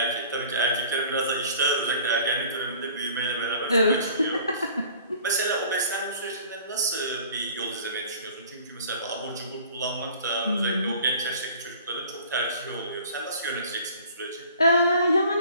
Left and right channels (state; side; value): inverted; both; correlation -0.49